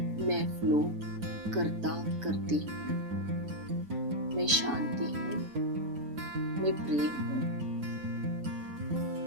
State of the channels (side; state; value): left; late; 7.1 ms